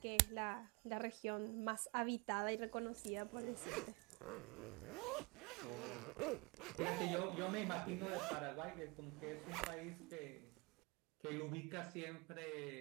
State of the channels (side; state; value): left; quieter; 27.7 dB